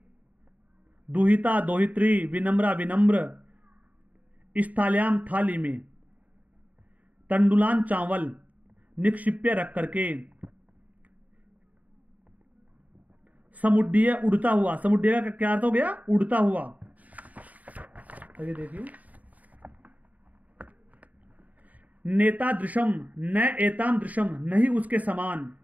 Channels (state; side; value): late; left; 0.074 ms